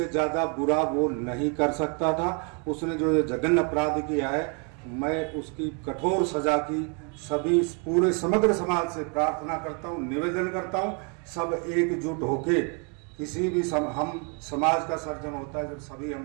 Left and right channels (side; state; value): left; quieter; 35.4 dB